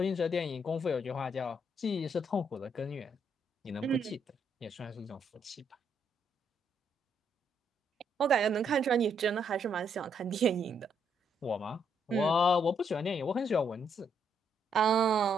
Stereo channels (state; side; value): normal; both; correlation 0.74